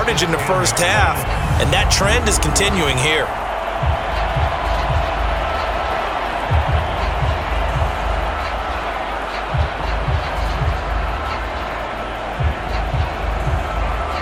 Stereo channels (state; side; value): identical; both; correlation 1.00